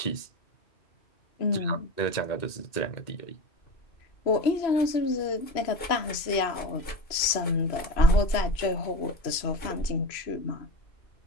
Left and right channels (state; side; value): late; right; 3.0 ms